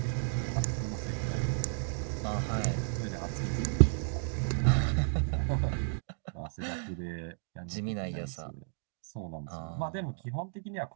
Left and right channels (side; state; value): left; silent; 56 dB below the other